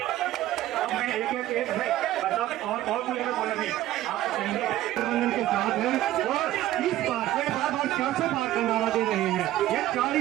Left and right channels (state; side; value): quieter; left; 14.4 dB